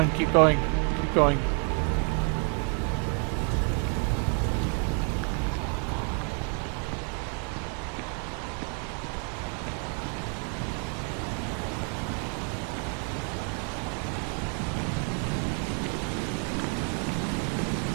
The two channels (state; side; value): quieter; left; 38.2 dB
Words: keep going, keep going.